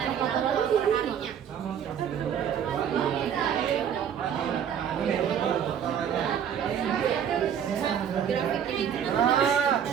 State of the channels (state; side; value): quieter; left; 8.6 dB